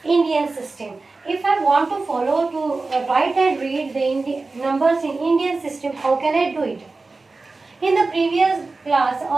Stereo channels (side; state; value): left; quieter; 3.7 dB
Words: Indian system. If I want to follow to write and read the numbers in Indian system, how can I do it? In the previous class